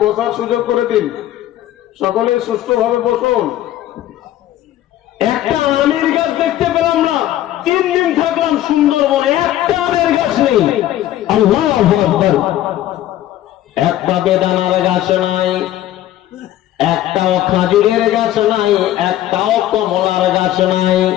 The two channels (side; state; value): right; quieter; 13.3 dB